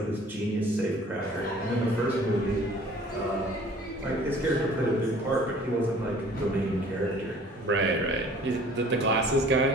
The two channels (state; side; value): normal; both; correlation 0.51